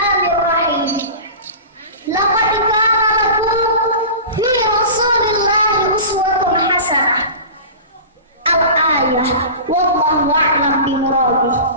Laqad kana lakum fi Rasulillahi uswatun hasanah. Al-ayah wallahu a'lam bimuradih.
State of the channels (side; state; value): both; inverted; correlation -0.34